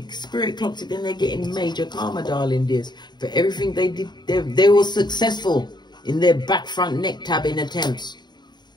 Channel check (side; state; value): right; late; 0.21 ms